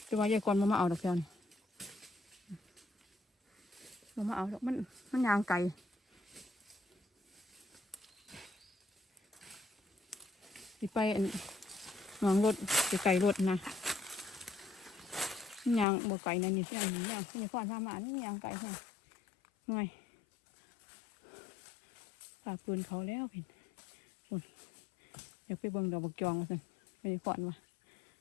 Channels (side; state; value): right; drops out; at 15.9 s